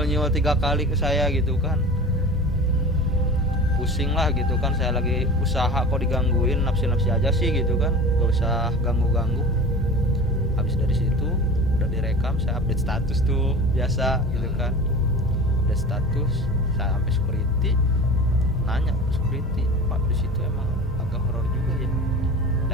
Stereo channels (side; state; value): both; normal; correlation 0.36